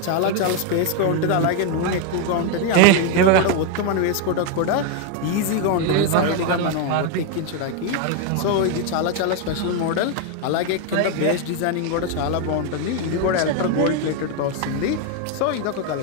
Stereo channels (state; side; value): different; both; correlation 0.01